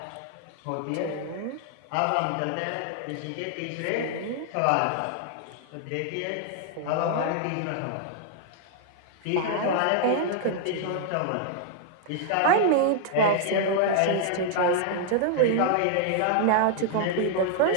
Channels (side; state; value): both; different; correlation 0.00